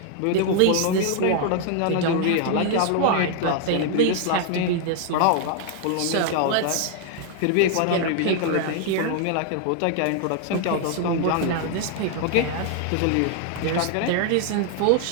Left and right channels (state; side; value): different; both; correlation 0.00